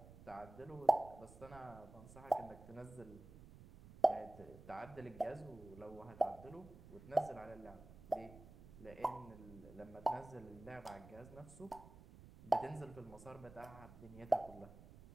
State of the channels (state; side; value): noise; right; rumble, 18 dB below the sound